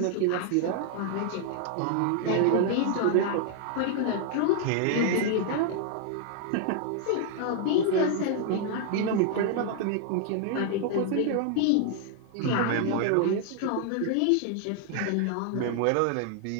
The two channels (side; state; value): both; different; correlation 0.00